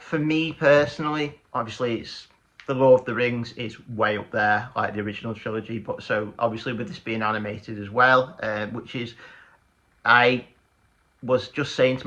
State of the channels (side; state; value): both; identical; correlation 1.00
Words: for me personally, obviously it's the Lord of the Rings is way up there, like the original trilogy. But so obviously with this being animated as well, which is, I was just saying to